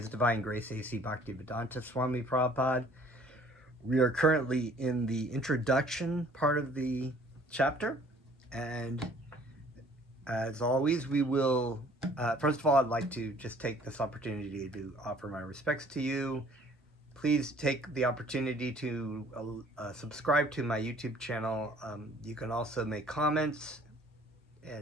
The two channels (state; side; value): normal; both; correlation 0.56